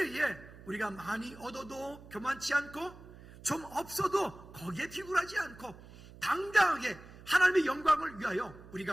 우리가 많이 얻어도 교만치 않고 좀 없어도 거기에 비굴하지 않고 당당하게 하나님의 영광을 위하여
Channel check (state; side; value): noise; right; hum, 18 dB below the sound